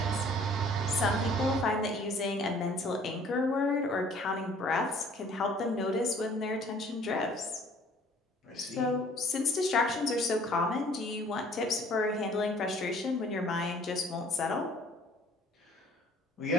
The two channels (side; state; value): both; normal; correlation 0.55